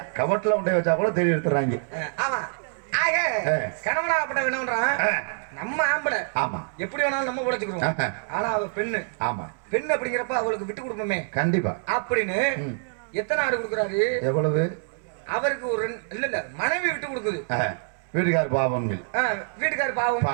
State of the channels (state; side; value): silent; left; digital silence